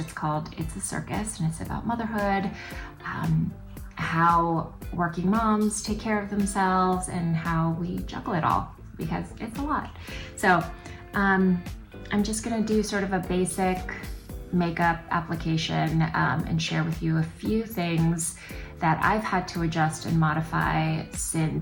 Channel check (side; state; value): both; identical; correlation 1.00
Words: called It's a Circus, and it's about motherhood, how working moms take care of themselves, and how we juggle it all, because it's a lot. So I'm just gonna do sort of a basic makeup application and share with you a few things that I've had to adjust and modify